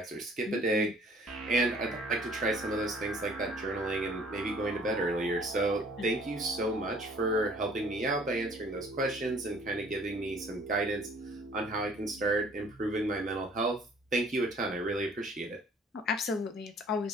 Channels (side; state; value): both; normal; correlation 0.56